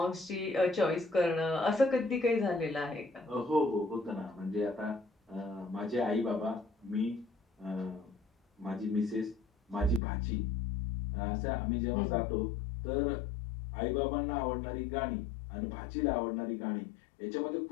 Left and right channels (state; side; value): drops out; right; at 10.0 s